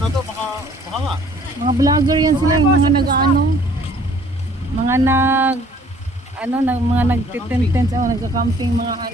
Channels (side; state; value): both; normal; correlation 0.56